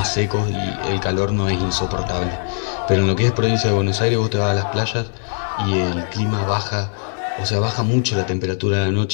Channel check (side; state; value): right; silent; 66 dB below the other